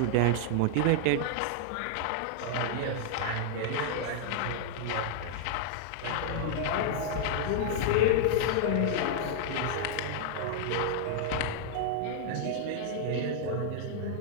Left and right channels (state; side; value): different; both; correlation -0.01